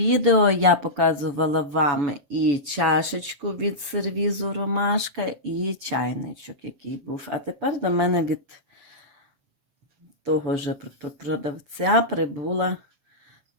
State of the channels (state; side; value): late; left; 7.4 ms